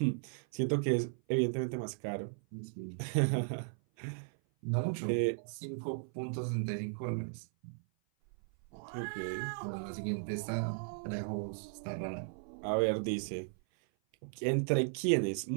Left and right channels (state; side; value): silent; left; 54 dB below the other